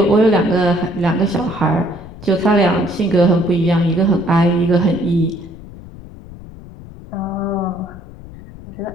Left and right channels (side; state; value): left; noise; rumble, 17 dB below the sound